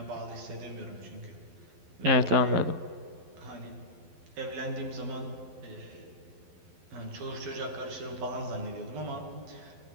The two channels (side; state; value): left; late; 12 ms